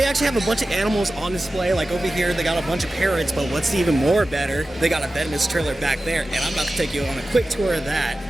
actually have a bunch of animals on display. Like over here, they got a bunch of parrots, but what's even more better, they got a venomous trailer back there, and I'm about to take you on a quick tour of that.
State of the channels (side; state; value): both; normal; correlation 0.94